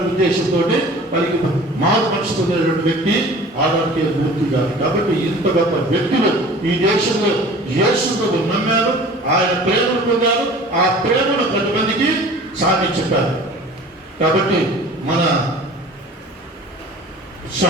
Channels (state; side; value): normal; both; correlation 0.44